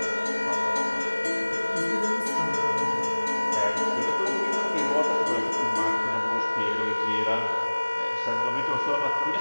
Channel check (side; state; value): both; inverted; correlation -1.00